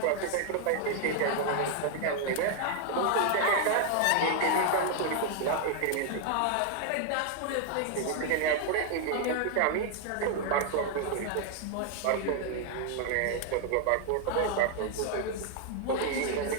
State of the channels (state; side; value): different; both; correlation 0.00